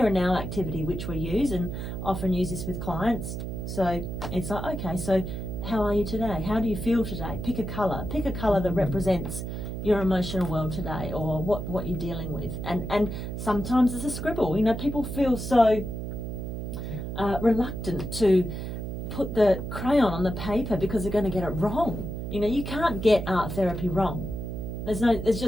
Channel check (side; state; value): right; noise; hum, 5 dB below the sound